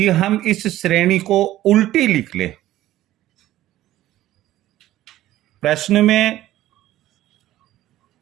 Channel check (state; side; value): quieter; left; 14.5 dB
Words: हम इस श्रेणी को उल्टी लिख ले। प्रश्न